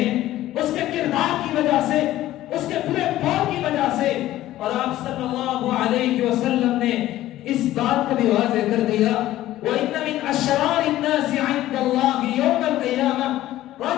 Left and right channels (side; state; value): right; quieter; 14.6 dB